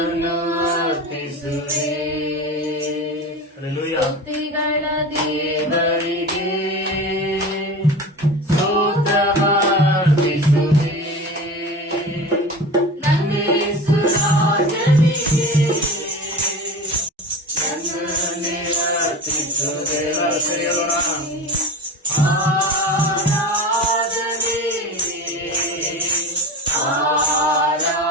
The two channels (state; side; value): normal; both; correlation 0.31